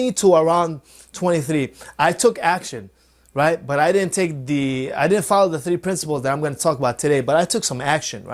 to around 23, I took action, right? But I didn't follow the 3 principles that I'm going to talk about today, but I took some action,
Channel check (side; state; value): both; identical; correlation 1.00